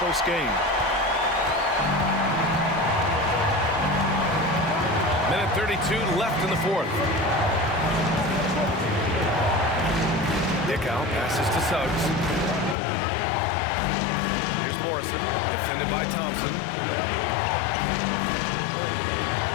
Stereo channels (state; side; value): drops out; right; at 12.8 s